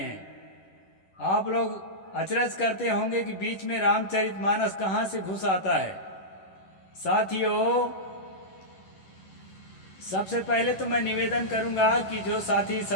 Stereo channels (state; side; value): late; right; 11 ms